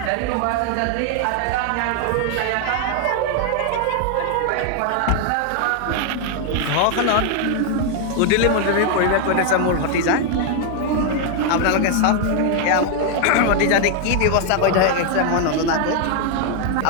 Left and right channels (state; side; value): different; both; correlation 0.00